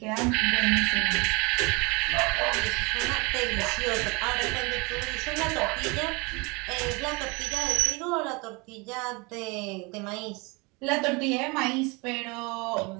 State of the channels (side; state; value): left; quieter; 27.9 dB